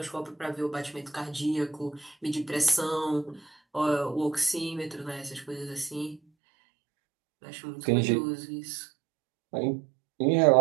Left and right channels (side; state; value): left; drops out; at 6.2 s